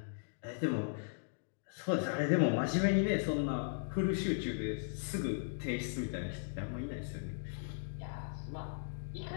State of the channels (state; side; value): silent; right; digital silence